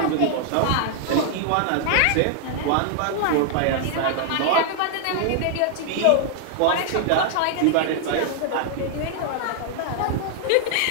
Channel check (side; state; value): both; different; correlation 0.00